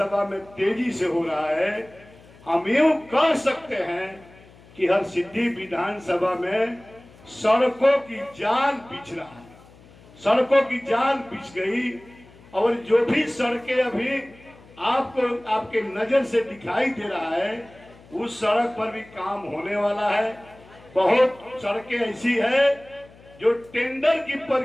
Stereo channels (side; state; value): left; noise; hum, 24 dB below the sound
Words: में तेजी से हो रहा है। हम यूं कह सकते हैं कि हरसिद्धि विधानसभा में सड़कों की जाल बिछ रहा है, सड़कों की जाल बिछ गई और जो भी सड़कें अभी आपको आपके नजर से दिखाई दे रहा है उस सड़क पर भी काम होने वाला है। बहुत सड़कें ऐसी है जो टेंडर की